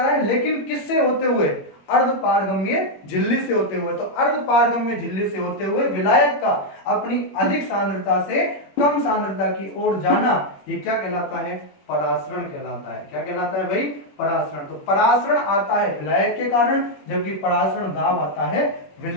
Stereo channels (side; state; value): right; late; 21 ms